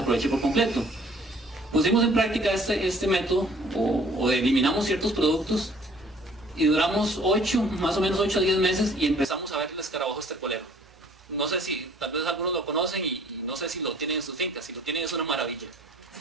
aproveche por completo. Pusimos en práctica este método, o eliminamos ciertos productos, y duramos más o menos 8 a 10 meses, y empezamos a ver el escarabajo estercolero. No sé si tal vez algunos lo conocen, y no sé si lo tienen en sus fincas. Si lo tienen es una maravilla.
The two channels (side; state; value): both; normal; correlation 0.56